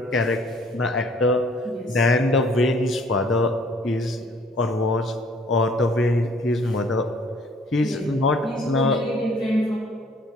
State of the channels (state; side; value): normal; both; correlation 0.58